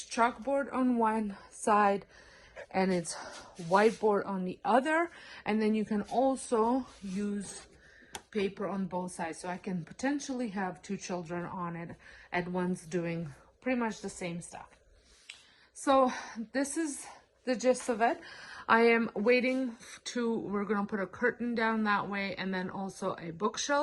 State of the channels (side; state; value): both; identical; correlation 1.00